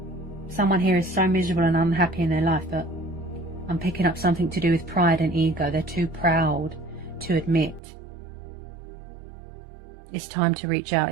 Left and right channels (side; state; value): left; drops out; at 7.8 s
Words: Someone here is so miserable and unhappy in their life, but I'm picking up something to do with pride and ego. They're too proud to admit. It's time to reach out.